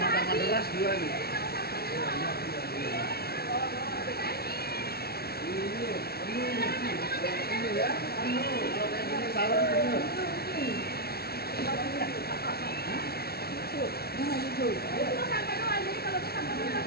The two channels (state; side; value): late; right; 0.45 ms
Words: deras dua nih. Ini ya, kalau kayak gini salam penuh.